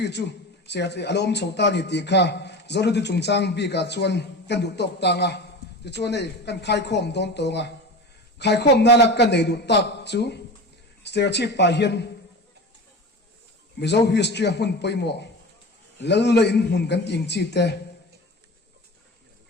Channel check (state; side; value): normal; both; correlation 0.31